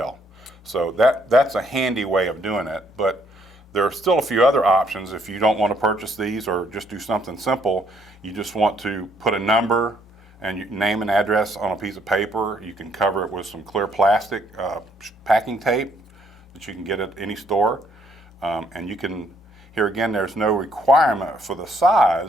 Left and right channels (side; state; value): both; normal; correlation 0.68